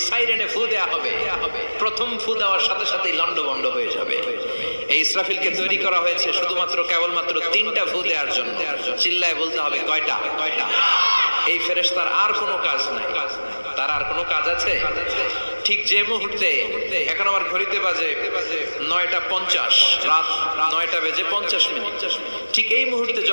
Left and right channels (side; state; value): both; inverted; correlation -1.00